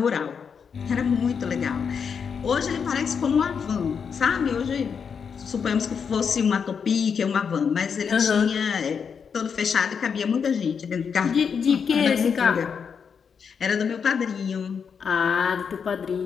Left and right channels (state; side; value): quieter; right; 6.5 dB